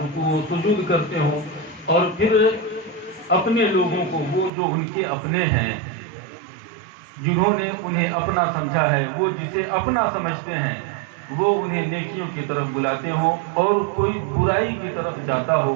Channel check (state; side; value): drops out; left; at 4.5 s